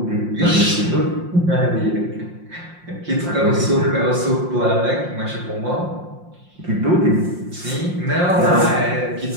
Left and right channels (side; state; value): left; late; 5.7 ms